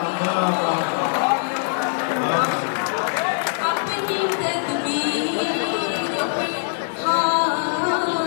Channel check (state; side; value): silent; right; digital silence